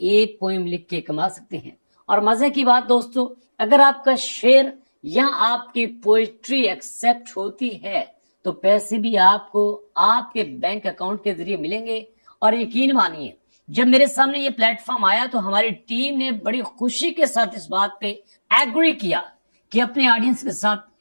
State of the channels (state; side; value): inverted; both; correlation -1.00